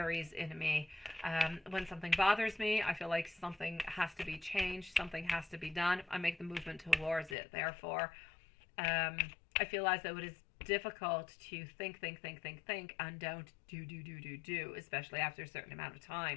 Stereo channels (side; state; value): right; drops out; at 7.4 s